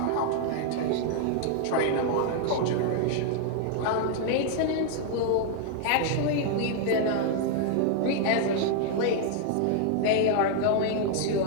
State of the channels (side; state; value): both; different; correlation 0.00